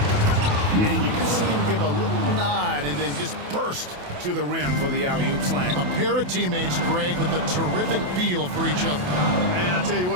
you can see him give a little nod and then just burst to the rim for the alley-oop slam. A pair of teammates, Greg, with a terrific feel for each other. Man, I tell you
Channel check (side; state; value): left; late; 28 ms